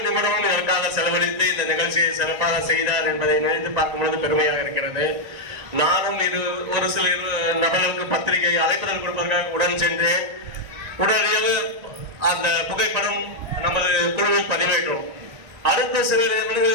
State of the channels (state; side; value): late; left; 1.9 ms